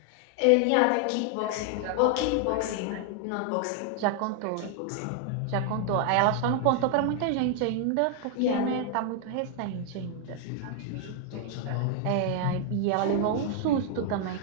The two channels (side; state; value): both; different; correlation 0.00